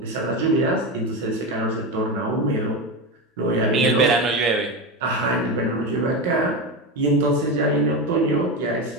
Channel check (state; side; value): normal; both; correlation 0.17